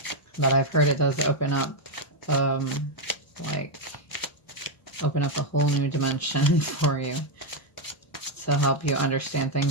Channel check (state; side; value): late; right; 1.2 ms